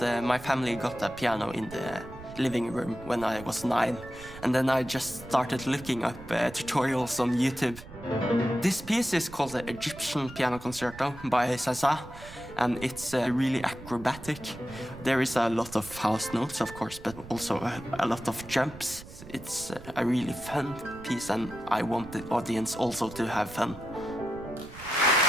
my family got a piano in the living room when I was 9. And then I just started looking up tutorials on YouTube. This piece is called the Egyptian Piano Concerto by Zaza, and it's really acrobatic. There is a lot of house notes, of course, but also a lot of jumps. It's a really fun piece, and I want the audience also to have fun.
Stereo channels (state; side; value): noise; right; rumble, 16 dB below the sound